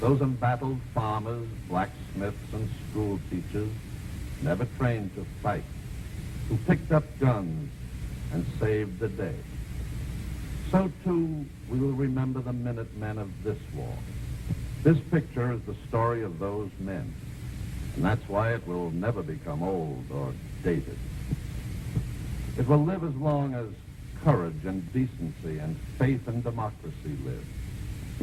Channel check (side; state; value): both; identical; correlation 1.00